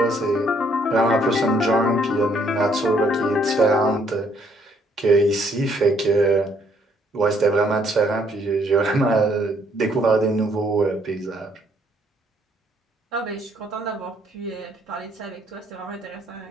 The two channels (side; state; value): both; normal; correlation 0.67